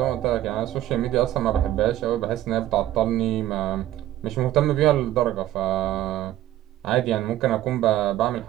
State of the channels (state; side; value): quieter; left; 13.6 dB